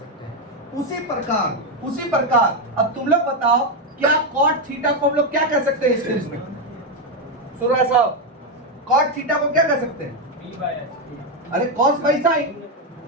हैं। उसी प्रकार अब तुम लोग बताओ क्या cot थीटा को हम लोग क्या कह सकते हैं? इस केस में सुनो ऐसा, cot थीटा को क्या कह सकते हैं? p by h। अरे cos बाई sin,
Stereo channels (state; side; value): normal; both; correlation 0.05